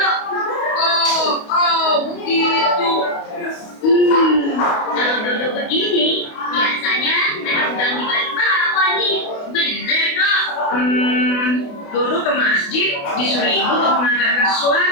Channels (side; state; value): right; late; 28 ms